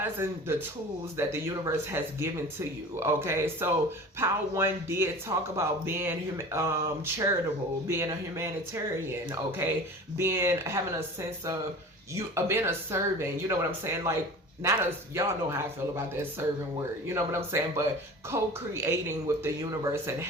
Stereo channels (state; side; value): normal; both; correlation 0.38